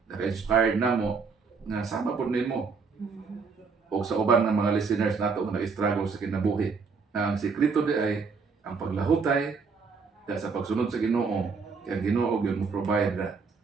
naka-inspired namo nga sama pud nimo o sa uban ng mga listeners nato nga nag-struggle sa kinabuhi. Ang sikreto di ay ang paglahutay dahil sa pagsunod sa Ginoo kay ang Ginoo gyud mo provide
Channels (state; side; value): quieter; left; 5.1 dB